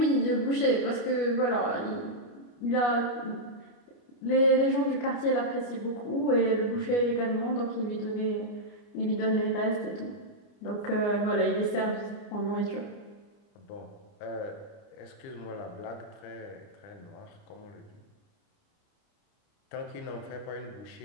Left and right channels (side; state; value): right; late; 29 ms